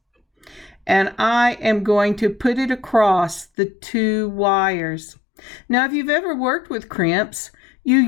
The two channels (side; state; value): right; drops out; at 3.5 s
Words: and I am going to put it across the 2 wires. Now, if you've ever worked with crimps, you